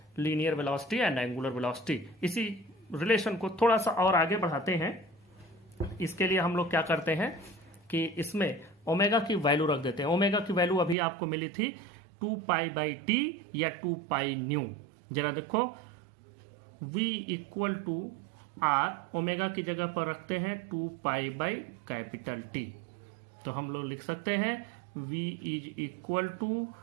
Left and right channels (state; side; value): drops out; left; at 11.0 s